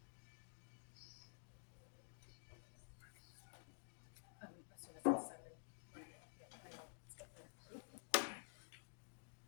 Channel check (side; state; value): right; silent; digital silence